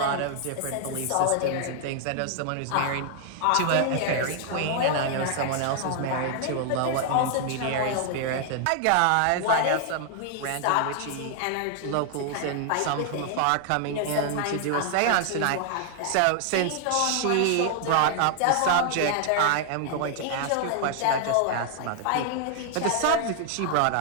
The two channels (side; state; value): both; different; correlation 0.00